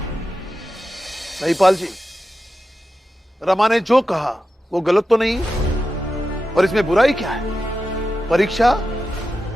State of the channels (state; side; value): normal; both; correlation 0.91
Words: महिपाल जी, रमा ने जो कहा वो गलत तो नहीं, और इसमें बुराई क्या है? परीक्षा